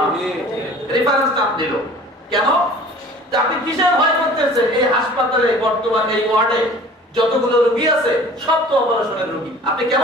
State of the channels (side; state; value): both; normal; correlation 0.47